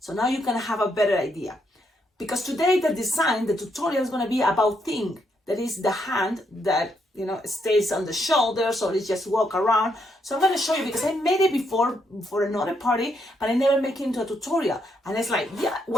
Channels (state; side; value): normal; both; correlation 0.77